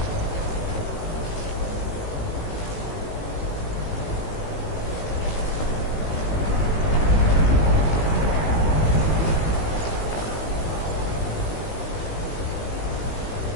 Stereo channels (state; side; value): late; right; 18 ms